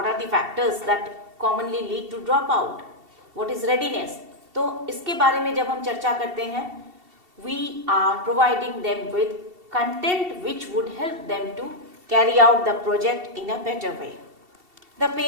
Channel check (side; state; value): left; late; 2.7 ms